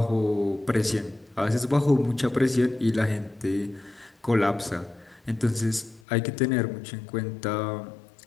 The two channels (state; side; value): drops out; right; at 6.0 s